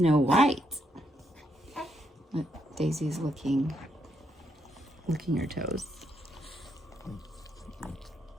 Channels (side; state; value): both; normal; correlation 0.77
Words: White. Look, Daisy's licking her toes.